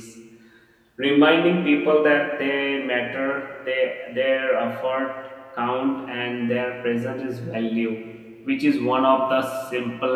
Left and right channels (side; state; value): both; identical; correlation 1.00